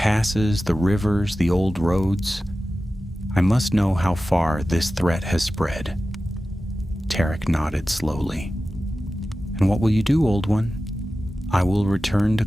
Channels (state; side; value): normal; both; correlation 0.95